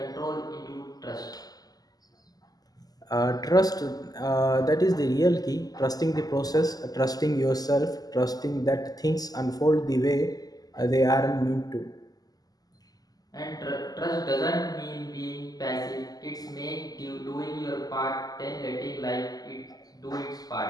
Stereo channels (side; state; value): right; late; 0.18 ms